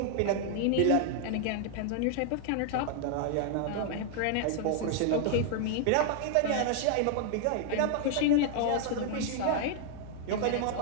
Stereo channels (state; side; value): different; both; correlation 0.00